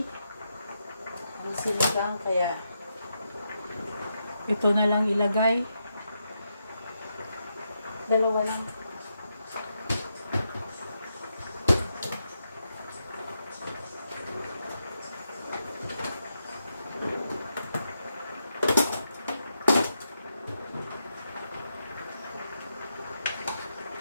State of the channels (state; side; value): inverted; both; correlation -0.83